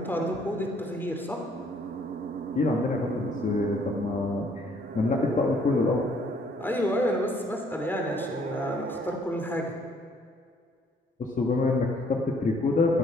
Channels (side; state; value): both; normal; correlation 0.63